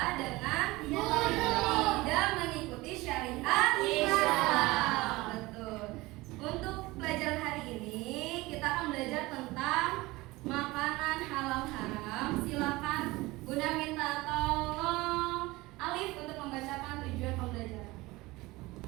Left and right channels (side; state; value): left; quieter; 20.8 dB